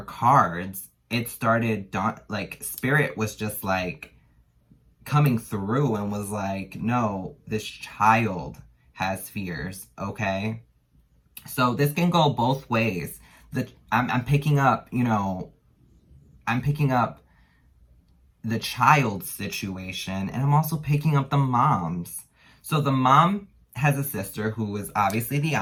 cards, it started, like, Spirit was just like coming through and was like, no, this child has fears, okay? So this can go both ways. I'm picking up, you know, I'm picking up the child's situation, and I'm also picking up the mom's. So the mom has a sister who is obviously the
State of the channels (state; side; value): identical; both; correlation 1.00